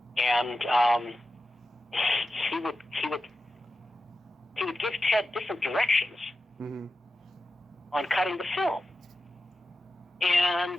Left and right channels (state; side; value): normal; both; correlation 0.92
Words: and he would give Ted different directions on cutting the film.